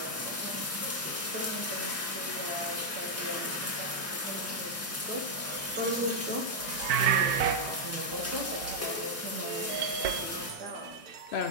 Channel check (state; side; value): normal; both; correlation -0.03